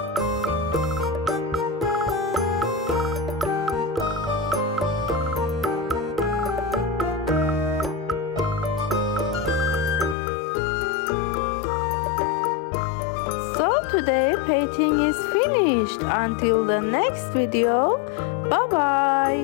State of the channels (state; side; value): drops out; right; at 10.2 s